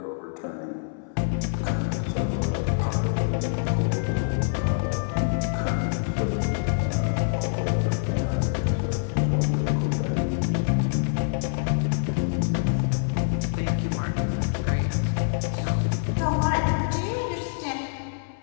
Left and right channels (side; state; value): right; silent; 61 dB below the other